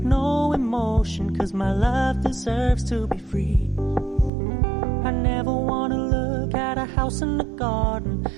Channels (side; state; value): left; drops out; at 4.3 s